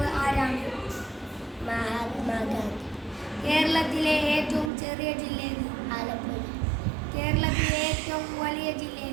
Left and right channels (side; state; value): left; drops out; at 4.7 s